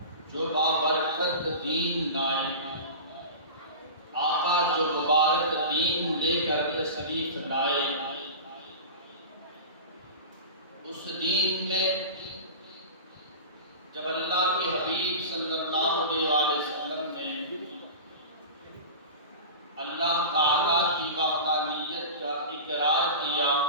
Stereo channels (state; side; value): inverted; both; correlation -0.31